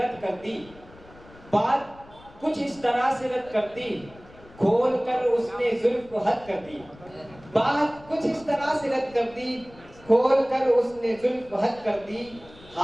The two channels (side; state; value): left; noise; rumble, 23 dB below the sound